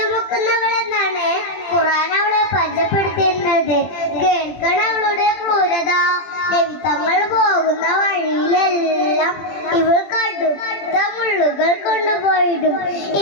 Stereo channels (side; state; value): right; late; 20 ms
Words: എന്നാണ് ഖുർആൻ അവളെ പരിചയപ്പെടുത്തിയിരുന്നത്. കേൾക്കണ അവളുടെ ക്രൂരത. നബിതങ്ങൾ പോകുന്ന വഴിയിലെല്ലാം ഇവൾ കടുത്ത മുള്ളുകൾ കൊണ്ടുപോയിടും.